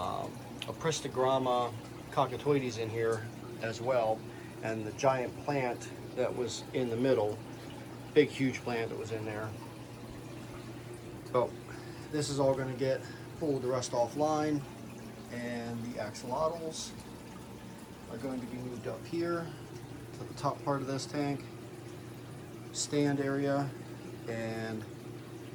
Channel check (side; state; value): both; identical; correlation 1.00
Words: cockatoides in here as well, and the giant plant that was in the middle, big huge plant that was in there. So this is all going to get pulled the rest offline, and the axolotls are going to be moved up here to the top part of this tank stand area, and